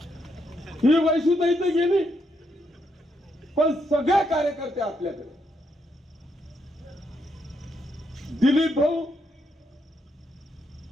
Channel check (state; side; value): normal; both; correlation 0.78